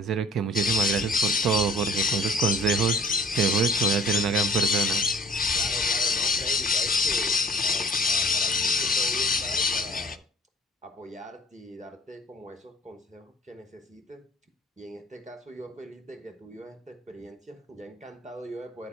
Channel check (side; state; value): both; normal; correlation 0.49